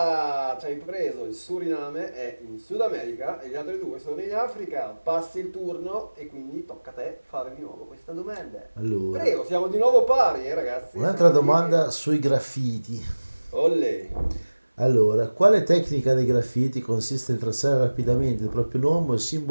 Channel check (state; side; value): inverted; both; correlation -1.00